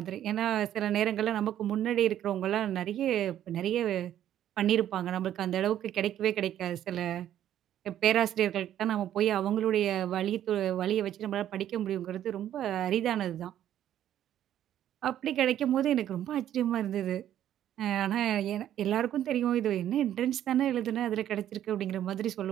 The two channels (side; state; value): left; quieter; 11.3 dB